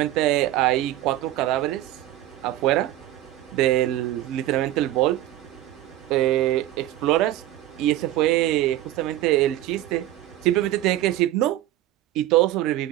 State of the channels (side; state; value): left; quieter; 14.5 dB